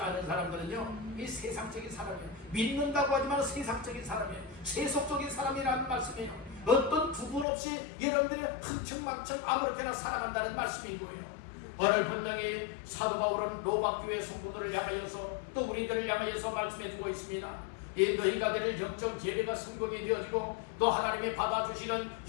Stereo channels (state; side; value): drops out; right; at 7.5 s